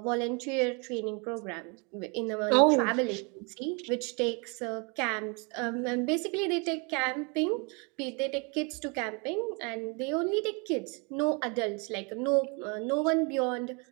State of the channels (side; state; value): left; quieter; 32.4 dB